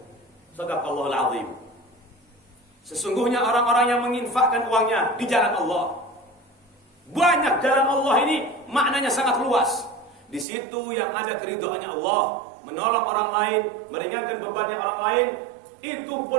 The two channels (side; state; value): left; drops out; at 10.5 s